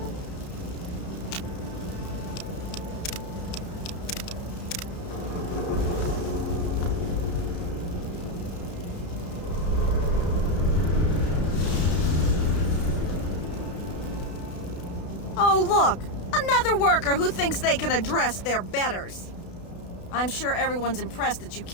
Oh, look! Another worker who thinks they can address their betters. I'm sure everyone's impressed that you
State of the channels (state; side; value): late; right; 32 ms